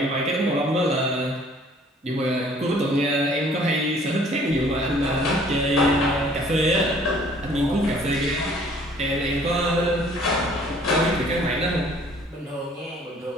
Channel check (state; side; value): normal; both; correlation 0.56